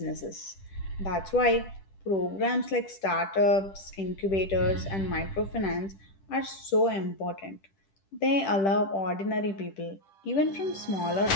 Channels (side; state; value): right; late; 10 ms